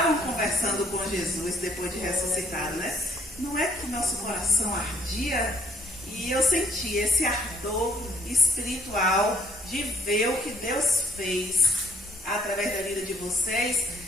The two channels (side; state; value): both; normal; correlation 0.66